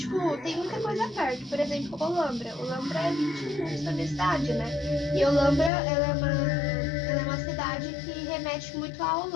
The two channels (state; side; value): drops out; right; at 5.7 s